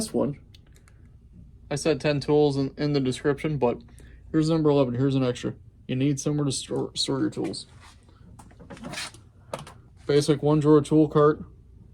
one, I said 10 tools in the description, but here's number 11. Here's an extra. You need somewhere to store your tools. Basic 1-drawer tool cart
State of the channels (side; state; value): both; identical; correlation 1.00